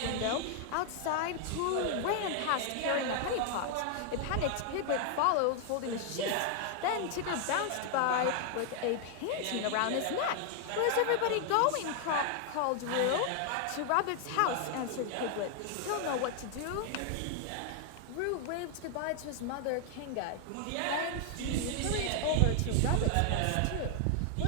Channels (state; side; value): different; both; correlation 0.00